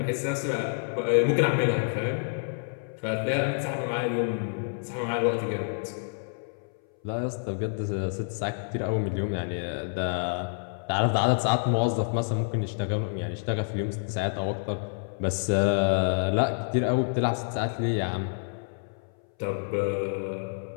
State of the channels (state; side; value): silent; right; 59 dB below the other